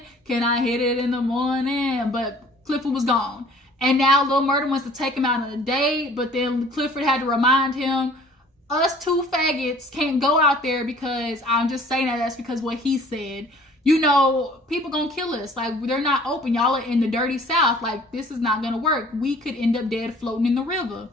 Can I hit it in the morning? But Clifford was gone. And now Lil Murda wants to take him out on a date, but then Clifford had to remind him, us two faggots can't go out there, because I'm just saying that's because what he said. People gonna kill us. Like, they're not open. Y'all are in the dirty South. Like, this is not gonna work. We could end up dead floating in the river.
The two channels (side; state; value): both; normal; correlation 0.52